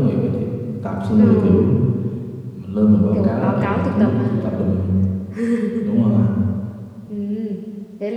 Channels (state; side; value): identical; both; correlation 1.00